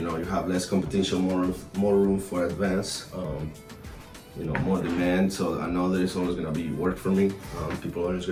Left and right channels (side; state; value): both; identical; correlation 1.00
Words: have less competition, more room for advance, more demand. So I know there's always gonna be work for me. People are always